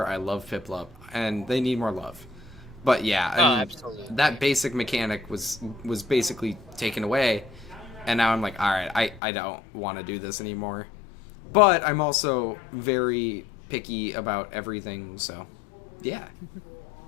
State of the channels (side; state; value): right; drops out; at 9.2 s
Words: I love Piplup, and they need more love. But yeah, I mean, absolutely. that basic mechanic was basically taken away, and now I'm like, alright, I don't want to do this anymore. But I'm also very picky about everything, so yeah.